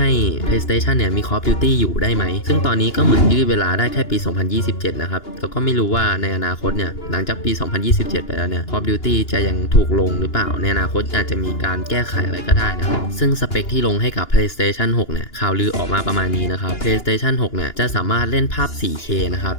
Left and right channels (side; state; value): right; late; 2.9 ms